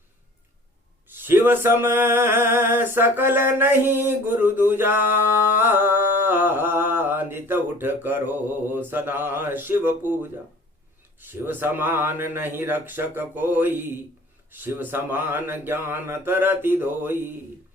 शिव सम सकल नहीं गुरु दूजा, नित उठ करो सदा शिव पूजा। शिव समान नहीं रक्षक कोई, शिव समान ज्ञान तरति दोई।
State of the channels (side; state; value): both; normal; correlation 0.47